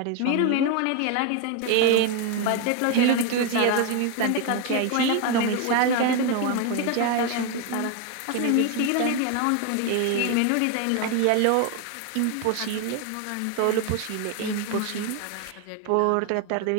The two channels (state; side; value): different; both; correlation 0.01